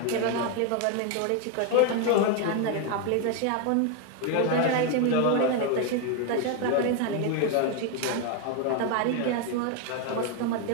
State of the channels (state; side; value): different; both; correlation 0.01